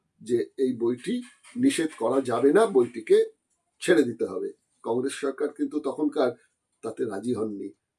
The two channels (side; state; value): both; identical; correlation 1.00